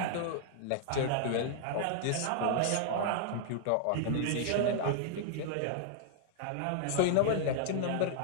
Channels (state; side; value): different; both; correlation -0.01